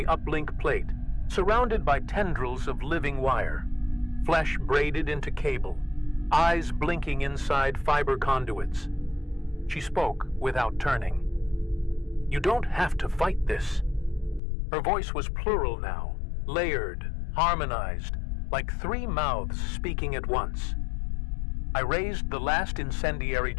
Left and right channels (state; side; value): drops out; right; at 14.4 s